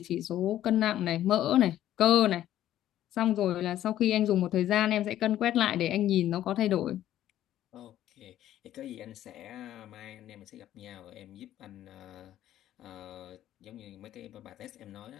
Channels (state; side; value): quieter; right; 12.5 dB